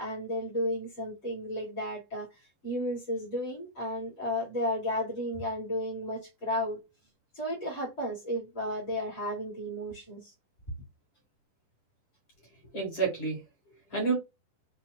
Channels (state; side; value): late; right; 10 ms